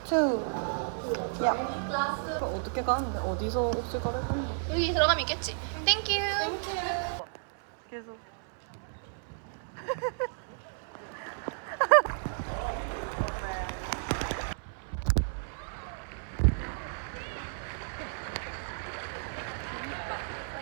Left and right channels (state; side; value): silent; left; 56 dB below the other